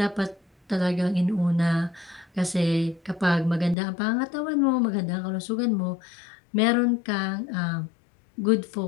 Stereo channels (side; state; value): right; drops out; at 3.8 s